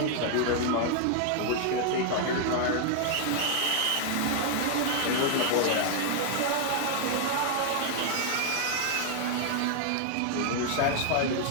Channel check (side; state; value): both; different; correlation 0.00